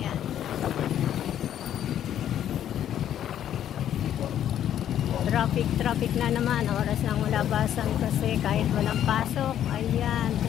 Traffic na naman. Oras ng labasan kasi kahit walang pasok. Ayan,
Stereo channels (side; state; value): right; quieter; 10.6 dB